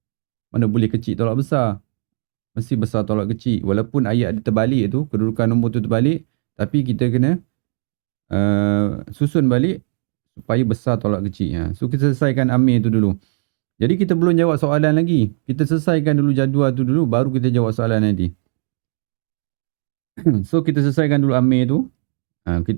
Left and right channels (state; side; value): silent; left; digital silence